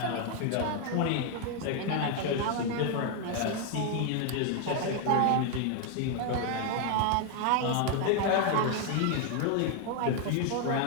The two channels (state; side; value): different; both; correlation 0.01